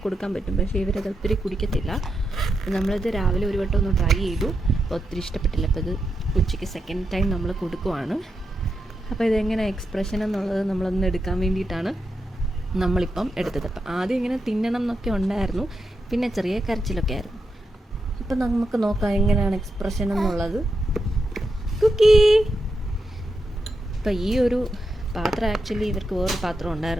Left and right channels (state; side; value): normal; both; correlation 0.86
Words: കൊടുക്കാൻ പറ്റും, പക്ഷേ ഇവരത് ഒത്തിരി കുടിക്കത്തില്ല. നമ്മളിത് രാവിലെ ഒരു വട്ടം ഒന്ന് ട്രൈ ചെയ്തു, അപ്പോൾ ഒത്തിരി ഇഷ്ടപ്പെട്ടില്ല. അപ്പോൾ ഇത് ഉച്ചയ്ക്ക് സെക്കൻഡ് ടൈം നമ്മൾ കൊടുക്കുവാണ്. അപ്പോൾ ഇതെങ്ങനെ എക്സ്പ്രഷൻ എന്നുള്ളത് നമ്മളൊന്ന് എടുക്കാൻ വേണ്ടിയിട്ടാണ് നമ്മളിപ്പം എടുത്തത്. അപ്പം ആദ്യം ഇങ്ങനെ തിന്നണം എന്നൊക്കെ ഉണ്ടായിരുന്നു, പിന്നെ ചെറിയ കരച്ചിലൊക്കെ ആയിരുന്നു. അപ്പം നമുക്ക് നോക്കാം എങ്ങനെയാണ് എക്സ്പ്രഷൻ എന്നുള്ളത്. കുക്കി. അപ്പം ഈ ഒരു പാത്രം ആക്ച്വലി ഇവർക്ക് വേറൊരു പാത്രം